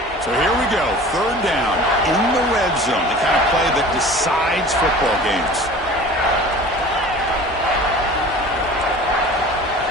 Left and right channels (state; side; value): normal; both; correlation 0.42